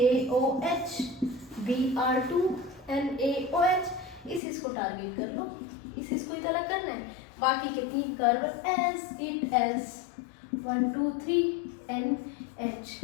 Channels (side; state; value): right; drops out; at 4.4 s